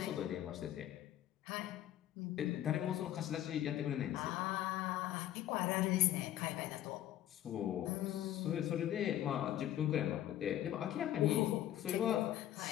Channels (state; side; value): quieter; right; 12.6 dB